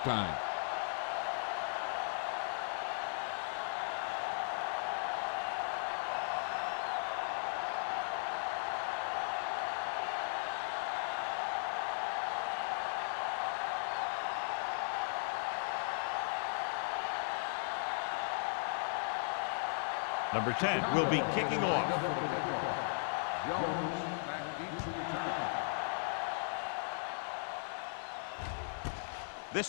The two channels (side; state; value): right; silent; digital silence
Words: Number 10 will be kicking off. Jones back deep to return.